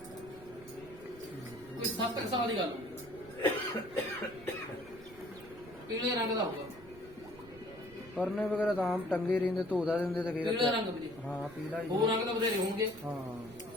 ਕੋਈ 7 ਸਾਲ ਦੀ ਗੱਲ ਹੋਊਗੀ, ਪੀਲੇ ਰੰਗ ਦਾ ਹੋਊਗਾ। ਪਰਨੇ ਵਗੈਰਾ ਤਾਂ ਆਮ ਟੰਗੇ ਰਹਿੰਦੇ, ਧੋਦਾ ਦਿੰਦੇ ਤੇ ਪੀਲਾ ਫਿਰ ਰੰਗ ਵੀਰੇ, ਹਾਂ ਪੀਲਾ ਹੀ ਹੋਰ ਰੰਗ ਤਾਂ ਬਥੇਰੇ ਹੋਣਗੇ।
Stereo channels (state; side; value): noise; right; rumble, 20 dB below the sound